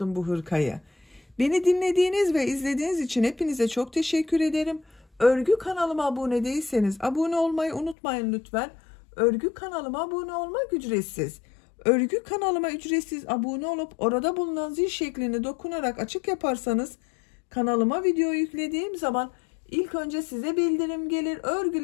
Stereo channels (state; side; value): drops out; right; at 8.0 s